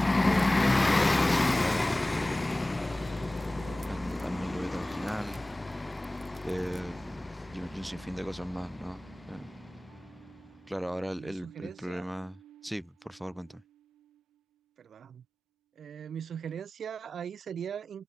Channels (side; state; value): both; normal; correlation 0.98